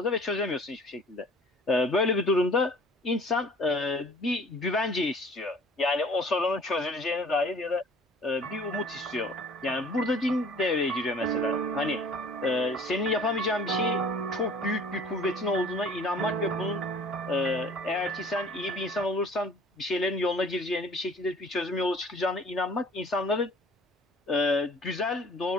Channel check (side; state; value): both; normal; correlation 0.50